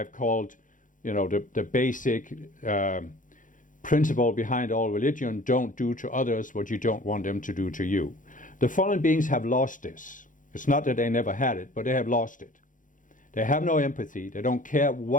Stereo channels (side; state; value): right; late; 0.38 ms